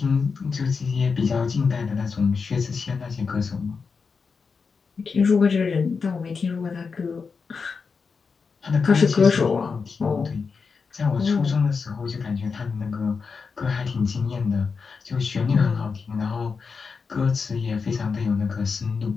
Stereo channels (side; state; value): right; quieter; 5.2 dB